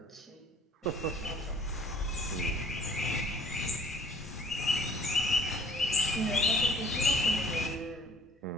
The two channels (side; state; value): both; normal; correlation 0.55